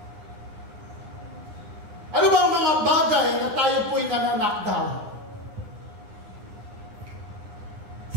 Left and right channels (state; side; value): late; left; 9.8 ms